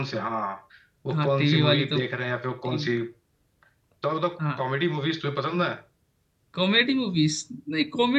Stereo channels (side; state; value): both; identical; correlation 1.00